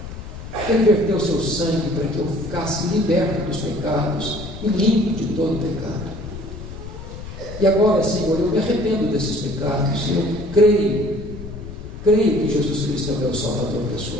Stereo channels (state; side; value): noise; left; rumble, 11 dB below the sound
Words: Ele verteu o seu sangue para que eu ficasse liberto dos pecados e limpo de todo pecado. E agora, Senhor, eu me arrependo desses pecados. Eu creio que Jesus Cristo é o meu Salvador